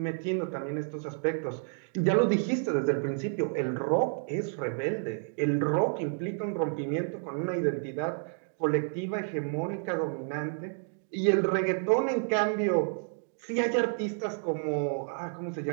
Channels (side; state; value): left; silent; 58 dB below the other